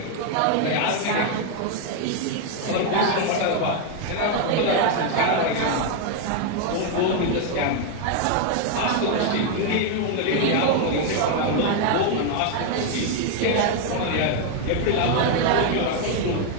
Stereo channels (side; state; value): both; different; correlation 0.01